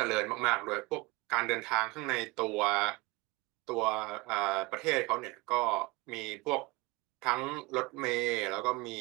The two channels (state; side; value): quieter; left; 23.6 dB